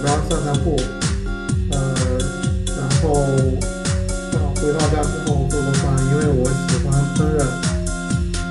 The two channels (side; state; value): both; identical; correlation 1.00